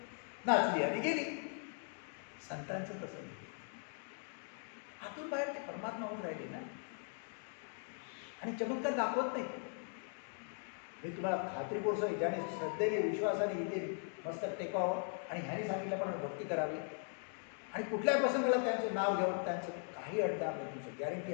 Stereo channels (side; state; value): right; silent; 51 dB below the other